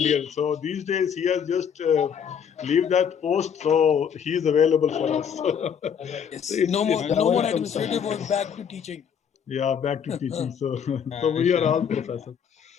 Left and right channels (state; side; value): quieter; right; 7.6 dB